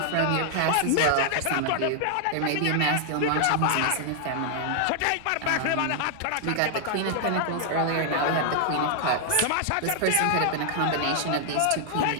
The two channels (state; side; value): different; both; correlation 0.00